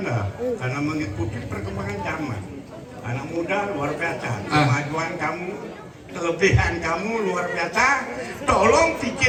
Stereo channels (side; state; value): both; identical; correlation 1.00